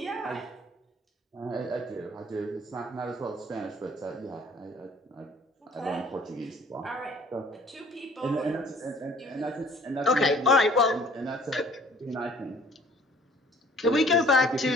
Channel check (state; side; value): normal; both; correlation 0.54